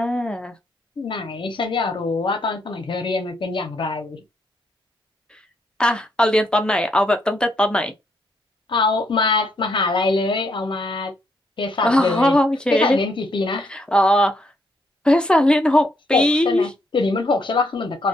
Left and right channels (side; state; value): both; normal; correlation 0.74